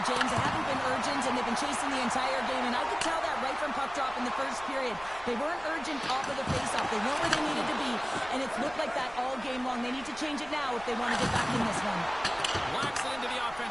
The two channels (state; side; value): noise; right; rumble, 20 dB below the sound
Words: James. They haven't been urgent, and they've been chasing the entire game, and I could tell that right from puck drop in the first period. They weren't urgent off of the faceoff. They weren't where they needed to be, and it's looked like that all game long. They need to change it now if they want to get back in this one. Whacks it into the